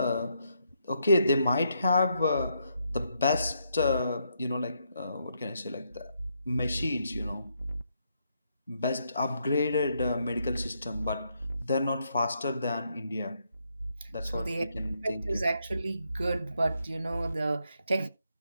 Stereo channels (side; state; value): both; inverted; correlation -0.78